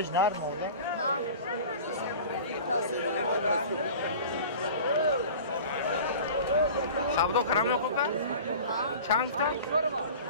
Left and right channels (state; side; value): inverted; both; correlation -0.39